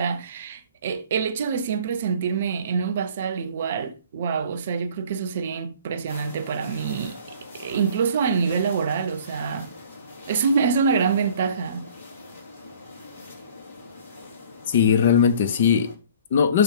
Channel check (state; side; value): inverted; both; correlation -0.51